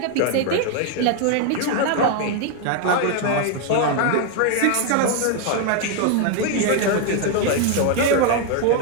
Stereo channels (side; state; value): both; different; correlation 0.01